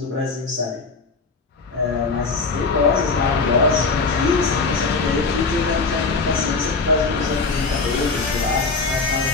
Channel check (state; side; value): quieter; right; 4.2 dB